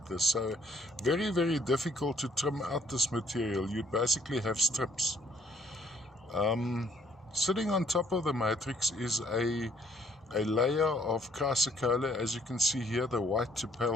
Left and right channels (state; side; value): normal; both; correlation 0.64